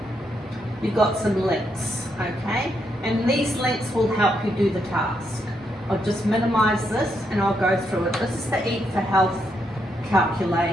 you've got some links, okay? And these links will help you do the task. I'll just minimize this and I'll go through it. This is the Eat for Health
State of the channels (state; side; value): normal; both; correlation 0.79